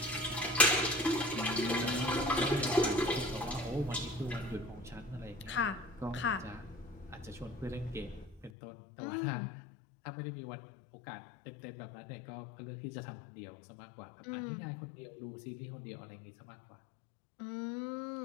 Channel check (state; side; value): drops out; right; at 8.5 s